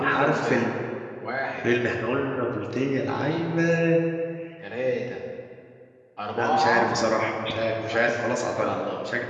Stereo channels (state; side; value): identical; both; correlation 1.00